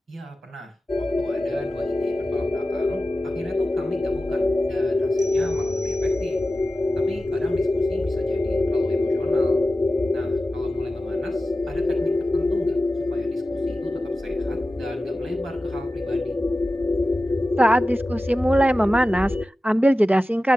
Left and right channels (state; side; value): normal; both; correlation 0.94